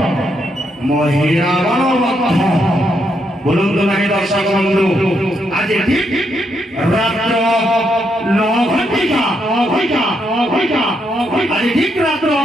महिला बलवत्थ बोलूं तो नहीं दर्शक बंधु आज ठीक रात्र 9 घंटिका आज ठीक रात्र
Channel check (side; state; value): both; normal; correlation 0.78